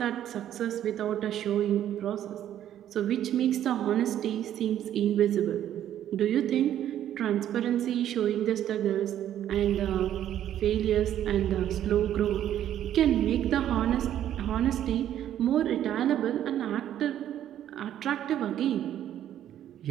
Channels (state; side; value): quieter; left; 11.1 dB